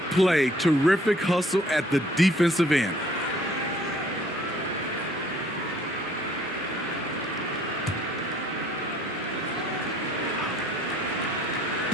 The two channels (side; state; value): both; normal; correlation 0.59